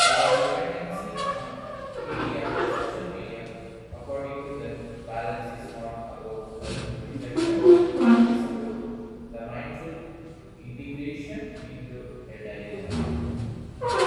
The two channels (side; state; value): both; identical; correlation 1.00